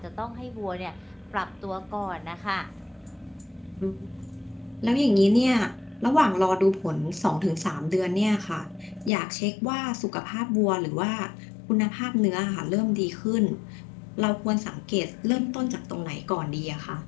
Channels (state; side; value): drops out; right; at 9.1 s